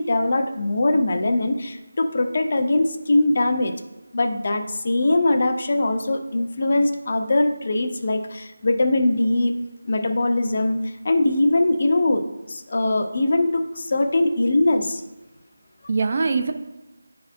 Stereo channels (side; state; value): both; inverted; correlation -0.95